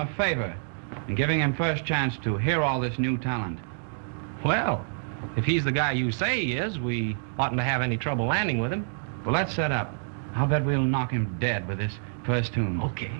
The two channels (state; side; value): silent; left; digital silence